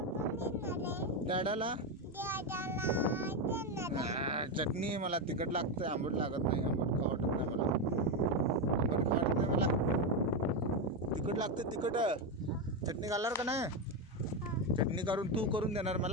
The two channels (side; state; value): both; normal; correlation 0.09